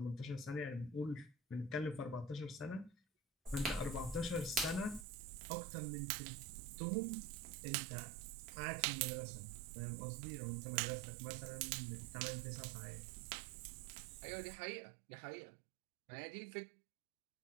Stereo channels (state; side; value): drops out; left; at 5.1 s